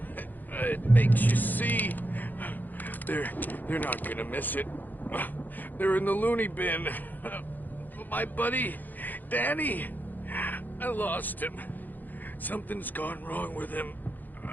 It makes you see. They're not gonna miss it. They're in the loony bin. My buddy, Danny, I lost him. Something's gone wrong with him.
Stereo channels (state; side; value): late; right; 0.085 ms